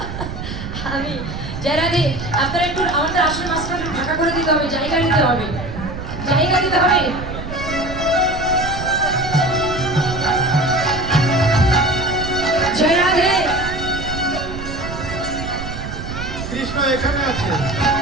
আমি জয় রাধে। আপনারা একটু আমাদের আসল মাস্টার ফাঁকা করে দিতে হবে, জায়গা দিতে হবে, জায়গা দিতে হবে। জয় রাধে। কৃষ্ণ এখানে আছে।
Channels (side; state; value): right; noise; rumble, 8 dB below the sound